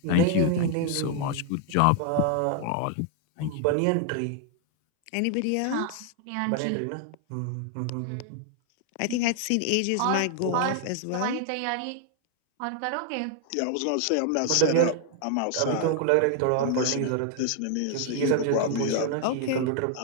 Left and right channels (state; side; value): different; both; correlation 0.00